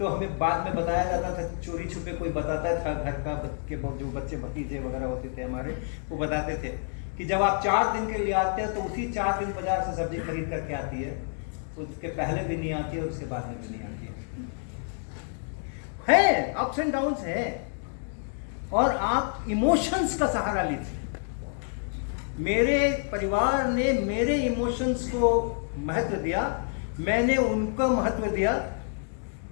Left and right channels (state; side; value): silent; right; 59 dB below the other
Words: हमें बाद में बताया जाता था, चोरी छुपे कोई बताता था घर का के जो बच्चे भतीजे वगैरह होते थे हमारे, वो बताते थे कि जब आप 4 दिन के लिए आते हैं तो उसी 4 दिन बाजार से सब्जी खरीद करके आती है, उसके पहले भी नहीं आती है और उसके बाद में भी नहीं आती है। अप्स एंड डाउन्स है और आप इमोशंस का सहारा लीजिए। मेरे परिवार ने मेरे इमोशंस को महत्व दिया, मैंने उनका महत्व दिया